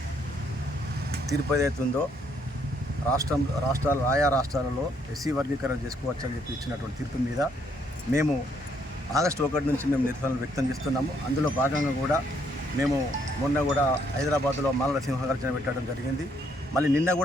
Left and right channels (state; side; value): normal; both; correlation 0.70